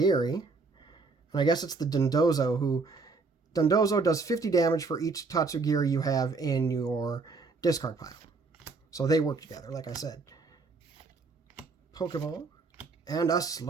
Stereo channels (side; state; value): left; quieter; 4.1 dB